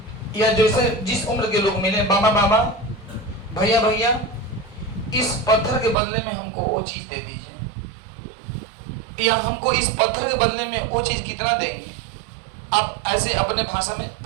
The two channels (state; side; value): drops out; left; at 6.0 s